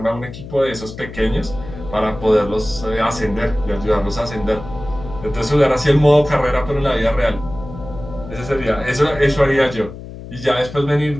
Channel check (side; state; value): left; noise; hum, 13 dB below the sound